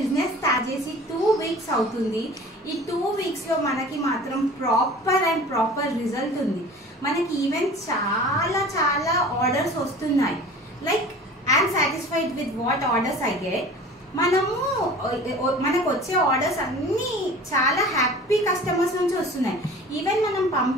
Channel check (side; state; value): both; normal; correlation 0.42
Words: స్టార్ట్ చేసి 2 వీక్స్ అవుతుంది. ఈ 2 వీక్స్లో మనకి మాత్రం ప్రాపర్ రిజల్ట్ ఉంది. మనకి ఈవెన్ చాలా ఆర్డర్స్ వస్తున్నాయి. Like I'm satisfied with what orders I get. మనకు వచ్చే ఆర్డర్స్ అన్నీ చాలా హ్యాపీ కస్టమర్స్ నుంచి వస్తున్నాయి. ఈవెన్ మనం